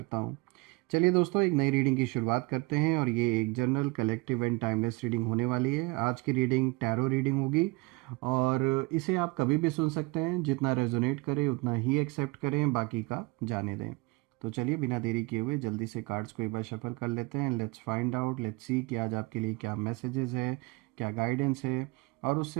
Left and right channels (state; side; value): quieter; left; 24.7 dB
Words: हूँ। चलिए दोस्तों, एक नई रीडिंग की शुरुआत करते हैं और ये एक general, collective and timeless reading होने वाली है। आज की रीडिंग टैरो रीडिंग होगी और इसे आप कभी भी सुन सकते हैं। जितना रेजोनेट करे उतना ही एक्सेप्ट करें, बाकी का जाने दें। तो चलिए बिना देरी किए हुए जल्दी से कार्ड्स को एक बार शफल कर लेते हैं। Let's find out, let's see कि आज आपके लिए क्या मैसेजेस है, क्या गाइडेंस है। और